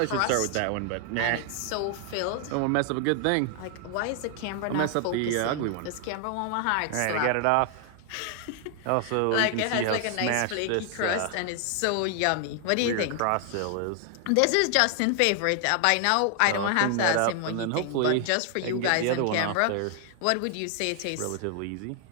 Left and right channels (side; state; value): both; different; correlation 0.00